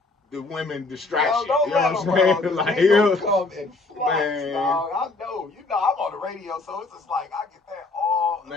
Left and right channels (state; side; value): quieter; right; 3.4 dB